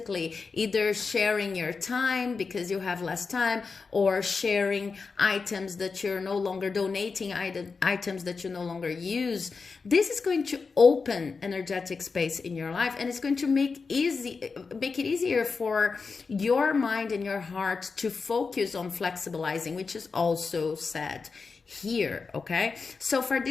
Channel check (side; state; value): right; quieter; 4.7 dB